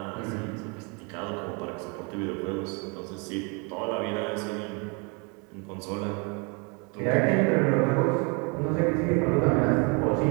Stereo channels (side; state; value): left; quieter; 32.6 dB